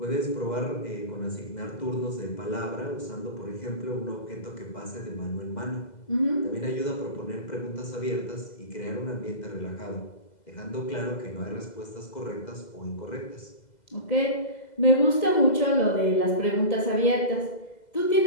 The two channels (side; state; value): right; late; 2.0 ms